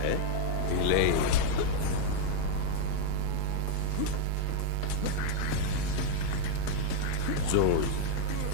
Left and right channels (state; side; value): different; both; correlation -0.01